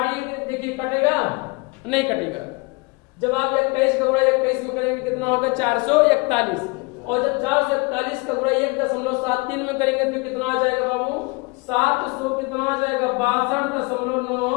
देखिए कटेगा नहीं कटेगा। जब आप 21 का गुणा 21 में करेंगे कितना होगा? 441। और जब 441 का गुणा 1.73 में करेंगे तो कितना आ जाएगा बाबू? 700 कितना आ जाएगा?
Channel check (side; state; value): right; quieter; 27.7 dB